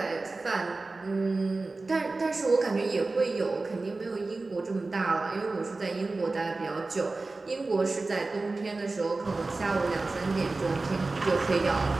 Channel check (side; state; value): left; quieter; 3.5 dB